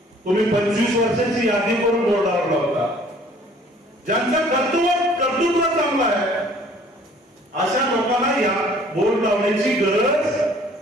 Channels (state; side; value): normal; both; correlation 0.55